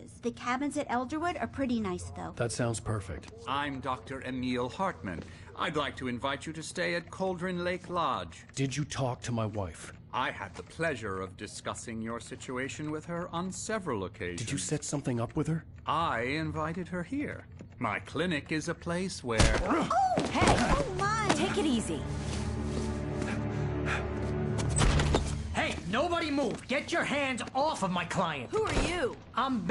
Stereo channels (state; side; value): identical; both; correlation 1.00